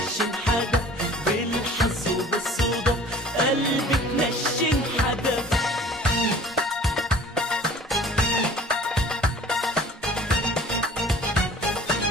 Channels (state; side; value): normal; both; correlation 0.48